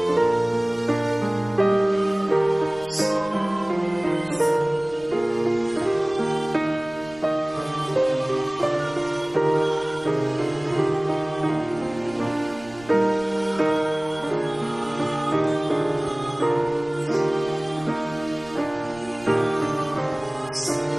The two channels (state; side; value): noise; right; rumble, 23 dB below the sound